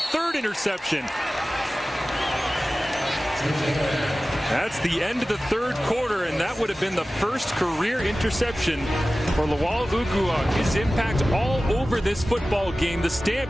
interception. That's the end of the 3rd quarter, and that would have been the first career interception for Lawal Uguak. His impact all over this football game. The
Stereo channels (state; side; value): normal; both; correlation 0.96